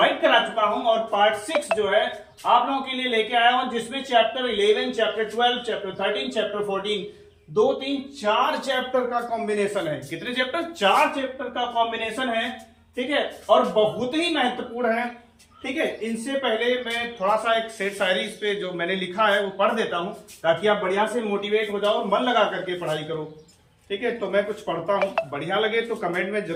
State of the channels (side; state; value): both; identical; correlation 1.00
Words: करा चुका हूं और पार्ट 6 जो है आप लोगों के लिए लेके आया हूं, जिसमें chapter 11, chapter 12, chapter 13, chapter 14 2, 3, 4 chapter का कॉम्बिनेशन है। कितने चैप्टर? 4 चैप्टर का कॉम्बिनेशन है, ठीक है। और बहुत ही महत्वपूर्ण है, ठीक है। इनसे पहले मैं थोड़ा सा एक शेर शायरी इस पे जो मैंने लिखा है वो पढ़ देता हूं, ताकि आप बढ़िया से मोटिवेट हो जाओ और मन लगा करके पढ़ाई करो, ठीक है। तो मैं कुछ पढ़ता हूं, बढ़िया लगे तो कमेंट में